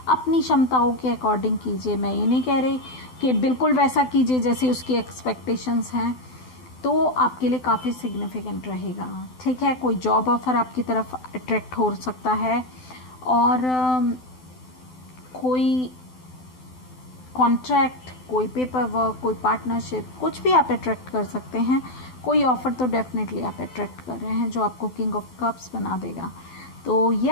अपनी क्षमताओं के अकॉर्डिंग कीजिए। मैं ये नहीं कह रही कि बिल्कुल वैसा कीजिए जैसे उसकी एक्सपेक्टेशंस हैं, तो आपके लिए काफ़ी सिग्निफिकेंट रहेगा, ठीक है। कोई जॉब ऑफ़र आपकी तरफ अट्रैक्ट हो सकता है, और कोई कॉन्ट्रैक्ट, कोई पेपर वर्क, कोई पार्टनरशिप, कुछ भी आप अट्रैक्ट कर सकते हैं। कोई ऑफ़र तो डेफिनेटली आप अट्रैक्ट कर रहे हैं जो आपको किंग ऑफ कप्स बना देगा। तो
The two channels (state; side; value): late; right; 12 ms